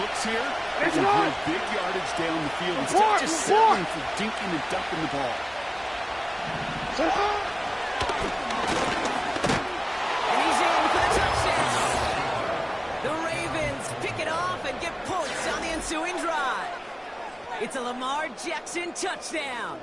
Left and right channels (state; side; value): identical; both; correlation 1.00